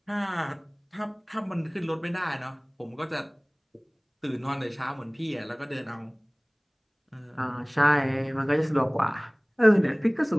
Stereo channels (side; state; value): both; identical; correlation 1.00